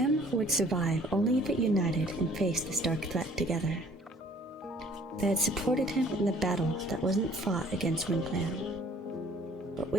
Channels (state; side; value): normal; both; correlation 0.55